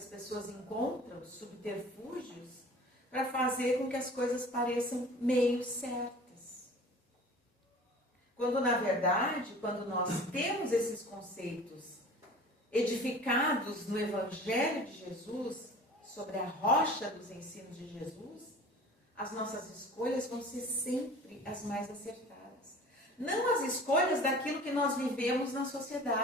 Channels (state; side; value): normal; both; correlation 0.42